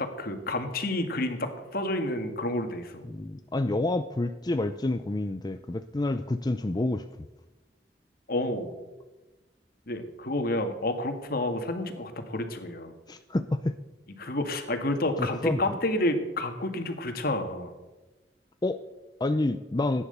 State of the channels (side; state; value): both; normal; correlation 0.48